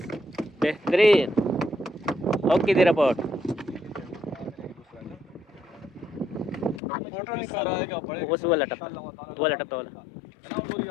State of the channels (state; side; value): drops out; right; at 6.8 s